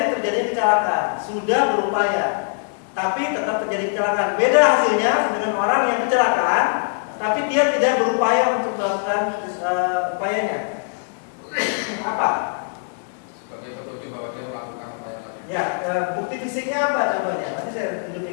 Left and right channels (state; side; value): silent; right; digital silence